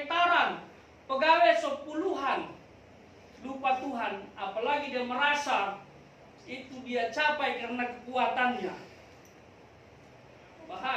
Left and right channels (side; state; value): both; identical; correlation 1.00